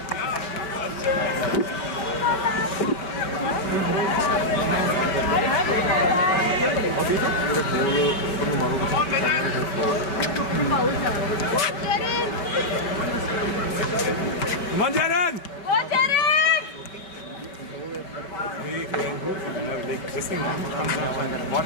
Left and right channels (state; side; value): late; right; 5.4 ms